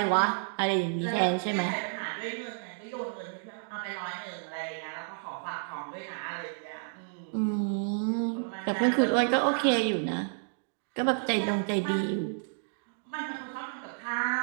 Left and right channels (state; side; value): silent; left; digital silence